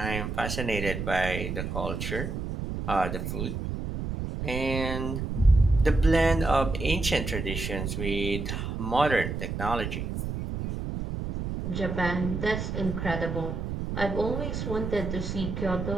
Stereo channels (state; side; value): noise; right; rumble, 4 dB below the sound